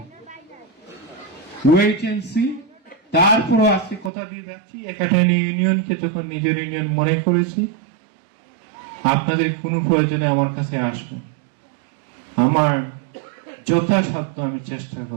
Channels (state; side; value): drops out; left; at 4.1 s